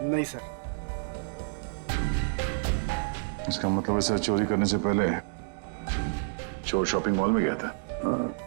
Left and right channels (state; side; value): silent; left; digital silence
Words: नहीं सर। इसका मतलब ऐसा चोरी करने से पहले चोर शॉपिंग मॉल में गया था।